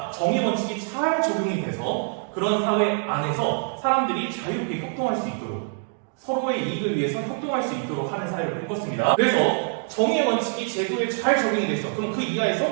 정의 원칙이 잘 적용이 돼서 그런 사회 안에서 사람들이 자유롭게 협동할 수 있도록 서로의 이익을 위해서 협동할 수 있도록 하는 사회를 꿈꿨습니다. 그래서 정의 원칙이 제도에 잘 적용이 됐어. 그럼 그 이하에서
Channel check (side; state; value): left; silent; 62 dB below the other